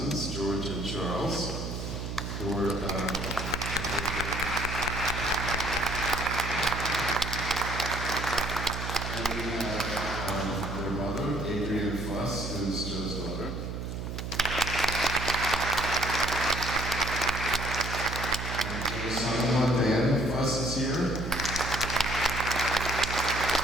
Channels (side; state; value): right; noise; hum, 5 dB below the sound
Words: George and Charles, who are who's Joe's daughter. And Joe's son-in-law, Dan Fuss, is here.